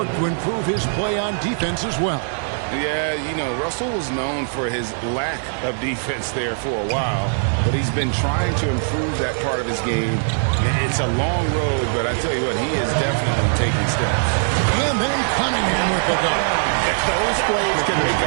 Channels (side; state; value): left; silent; digital silence